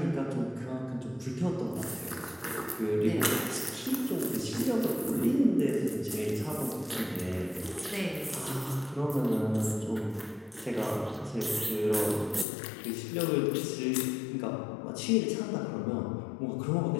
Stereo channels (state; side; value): drops out; right; at 12.5 s